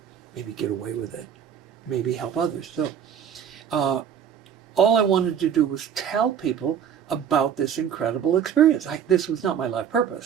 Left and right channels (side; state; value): left; quieter; 8.6 dB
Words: maybe get away with it, maybe help others. So all I wanted to do was tell people about this incredible experience. This was not my life